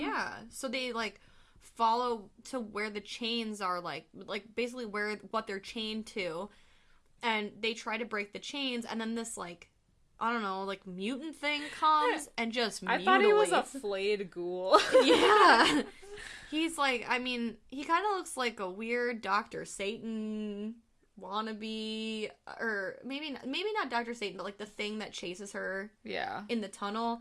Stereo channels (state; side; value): identical; both; correlation 1.00